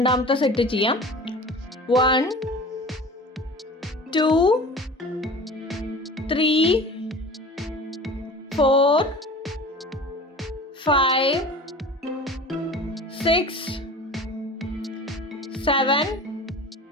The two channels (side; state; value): both; normal; correlation 0.39